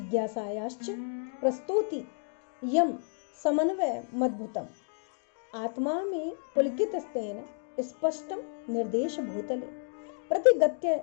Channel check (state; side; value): silent; right; digital silence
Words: प्रस्तौति यम समन्वय मद्भुतम। आत्मा में पुलकित स्तेन स्पष्टम निर्देश भूतले प्रतिगत्य